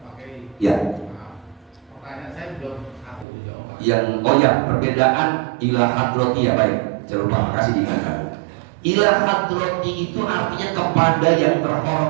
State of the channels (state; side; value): drops out; left; at 3.2 s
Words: Oke. Ya. Pertanyaan saya belum aku jawab. Yang perbedaan ila hadrati, ya baik, jangan lupa makasih diingatkan. Ila hadrati itu artinya kepada yang